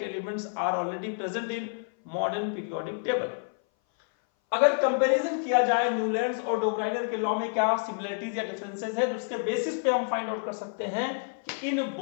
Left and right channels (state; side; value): silent; right; 57 dB below the other